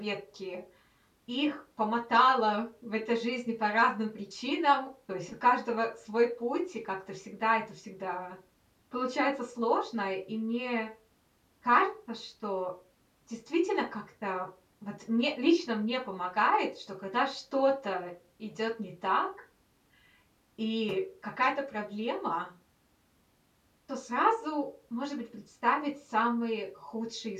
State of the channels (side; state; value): both; identical; correlation 1.00